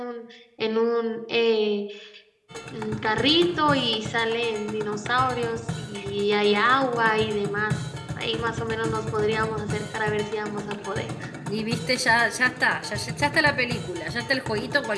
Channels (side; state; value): both; identical; correlation 1.00